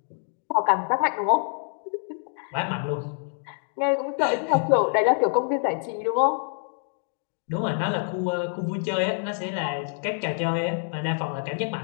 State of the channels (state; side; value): silent; right; 61 dB below the other